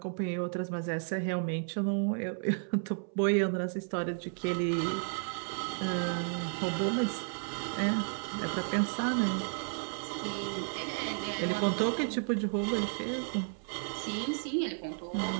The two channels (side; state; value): left; silent; 56 dB below the other